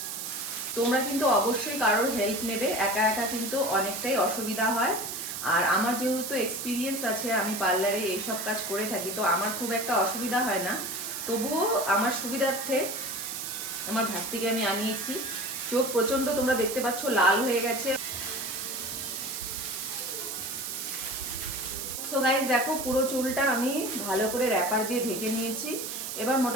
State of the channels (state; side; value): noise; right; hiss, 5 dB below the sound